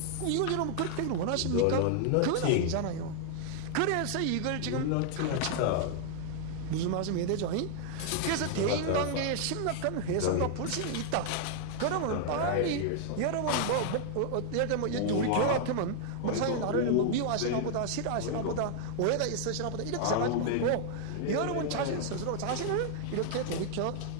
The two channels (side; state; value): both; different; correlation 0.00